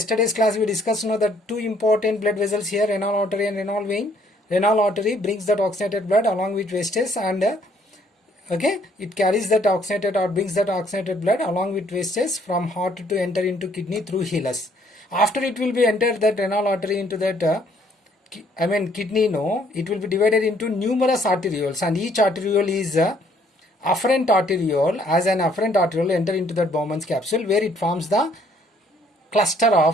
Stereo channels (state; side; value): normal; both; correlation 0.64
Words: class we discussed that two important blood vessels here, renal artery and renal vein. Renal artery brings that oxygenated blood along with wastes, and it carries that oxygenated or brings that oxygenated blood along with wastes from heart to enter into kidney through hilus. After it will be entered that renal artery into that kidney, it will be divided into numerous arterioles, and each arteriole is afferent arteriole. As an afferent arteriole enter into that Bowman's capsule, where it forms the cluster